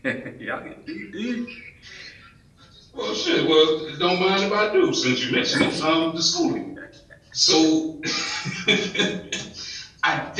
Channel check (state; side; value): identical; both; correlation 1.00